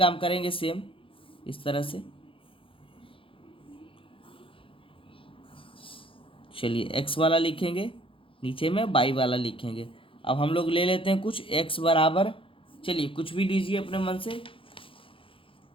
करेंगे सेम इस तरह से। चलिए x वाला लिखेंगे, नीचे में y वाला लिखेंगे। अब हम लोग ले लेते हैं कुछ x बराबर, चलिए कुछ भी लीजिए अपने मन से।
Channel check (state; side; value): late; right; 0.26 ms